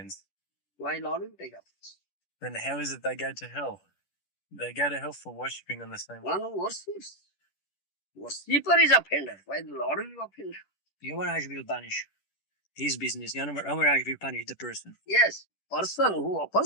Why Lord will take offense? Then how is it they go to hell? They go to hell for worshipping on the same One level. who worships. Worshipper is offender. Why the Lord will be offender? Yamaraj will punish his business. Yamaraj will punish the person. Yes. Person who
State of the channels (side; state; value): right; late; 10 ms